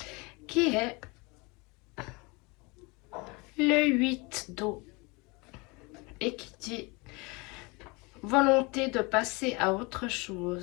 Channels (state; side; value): quieter; right; 27.2 dB